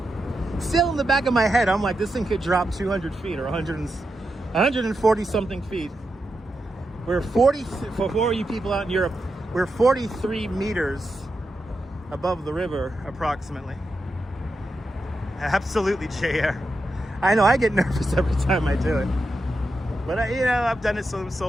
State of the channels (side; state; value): both; normal; correlation 0.87